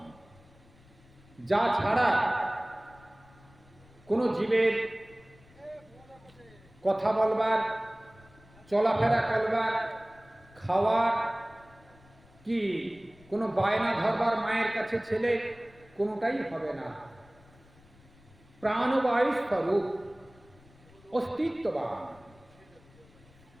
যা ছাড়া কোনো জীবের কথা বলবার, চলাফেরা করবার, খাওয়ার কি কোনো বায়না ধরবার মায়ের কাছে ছেলে কোনোটাই হবে না। প্রাণবায়ু স্বরূপ, অস্তিত্ববান।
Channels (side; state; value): left; noise; rumble, 26 dB below the sound